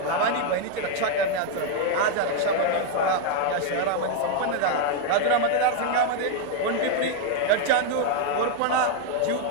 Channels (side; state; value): both; different; correlation 0.00